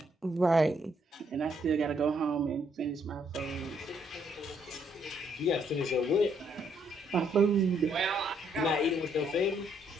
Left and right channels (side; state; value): both; normal; correlation 0.71